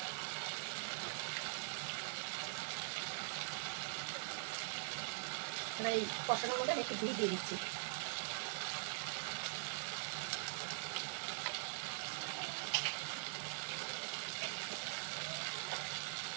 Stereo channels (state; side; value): silent; left; digital silence